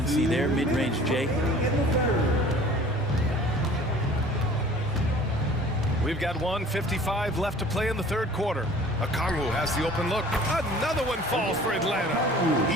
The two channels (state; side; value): normal; both; correlation 0.48